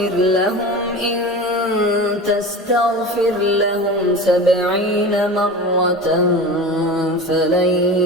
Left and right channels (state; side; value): normal; both; correlation 0.32